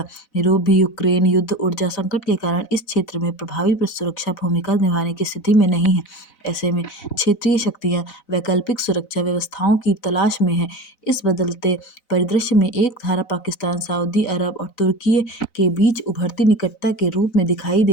यूरोप भी यूक्रेन युद्ध, ऊर्जा संकट के कारण इस क्षेत्र में प्रभावी सुरक्षा भूमिका निभाने की स्थिति में नहीं है। ऐसे में क्षेत्रीय शक्तियां वैकल्पिक सुरक्षा व्यवस्थाओं की तलाश में हैं। इस बदलते परिदृश्य में एक धारा पाकिस्तान, सऊदी अरब और तुर्की के बीच उभरती निकटता के रूप में दिखाई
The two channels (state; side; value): late; right; 4.0 ms